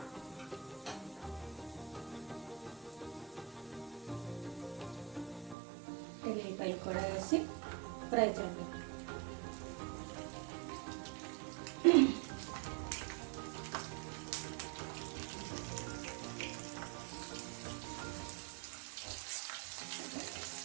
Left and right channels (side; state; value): left; drops out; at 5.6 s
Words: ఎల్లిపాయలు కూడా వేసి ఫ్రై చేద్దాం.